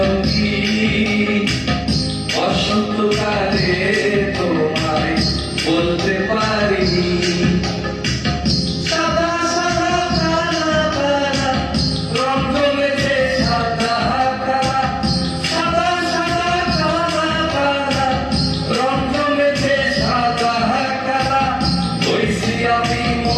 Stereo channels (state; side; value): identical; both; correlation 1.00